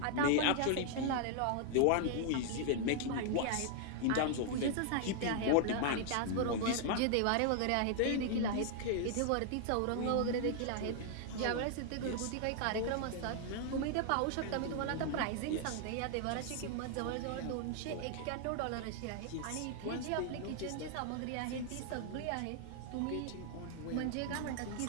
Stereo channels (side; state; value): both; different; correlation 0.00